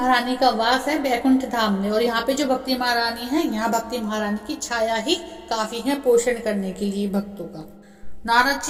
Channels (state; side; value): identical; both; correlation 1.00